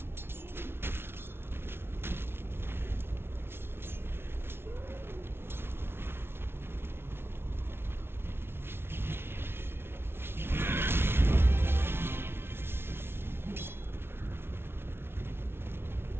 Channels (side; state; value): left; late; 0.12 ms